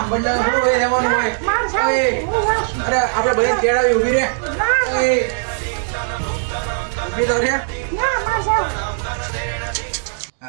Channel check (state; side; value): silent; left; 66 dB below the other